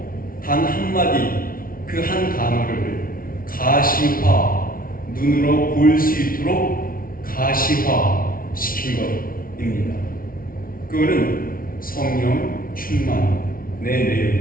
단 한마디, 그 한 단어를 가시화, 눈으로 볼 수 있도록 가시화 시킨 것입니다. 그거는 성령 충만의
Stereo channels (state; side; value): late; right; 0.42 ms